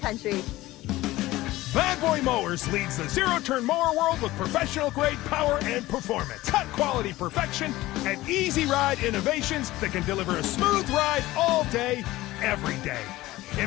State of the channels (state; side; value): quieter; right; 17.6 dB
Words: Bad Boy Mowers leads the zero-turn mower world with professional-grade power and performance, cut-quality perfection, and easy-ride innovations that can deliver a smooth ride all day, every day.